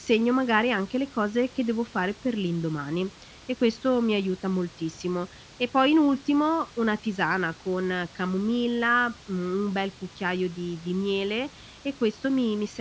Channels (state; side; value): identical; both; correlation 1.00